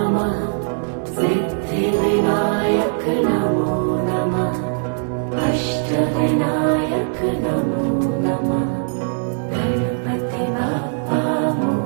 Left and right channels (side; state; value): left; silent; digital silence